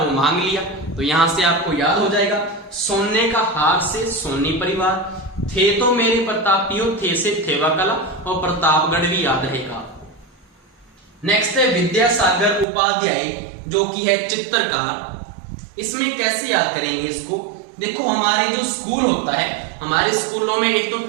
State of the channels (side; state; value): left; drops out; at 12.7 s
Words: मांग लिया। तो यहां से आपको याद हो जाएगा, सोने का हार से सोनी परिवार, थे तो मेरे प्रतापियों, थे से थेवा कला, और प्रतापगढ़ भी याद रहेगा। नेक्स्ट है विद्यासागर उपाध्याय, जो कि है चित्रकार। इसमें कैसे याद करेंगे इसको, देखो हमारे जो स्कूल होता है, हमारे स्कूलों में एक तो